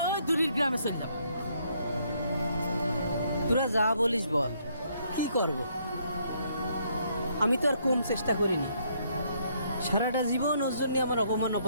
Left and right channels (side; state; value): both; inverted; correlation -0.70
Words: ওই দূরের গ্রামে চলে যাবে। তোরা যা বলিস বল, কি করব? আমি তো আর কম চেষ্টা করিনি, সারাটা জীবন ওর জন্য আমার অপমান